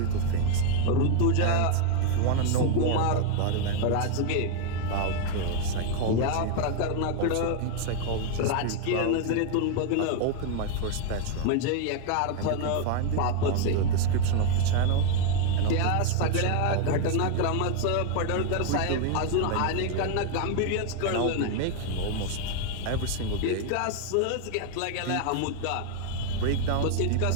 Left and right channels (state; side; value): different; both; correlation 0.01